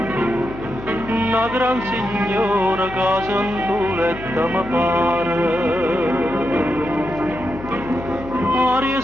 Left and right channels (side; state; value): left; noise; hum, 14 dB below the sound